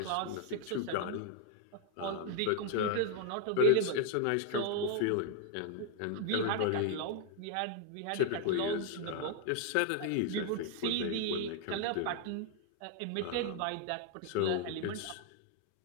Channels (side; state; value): both; different; correlation 0.00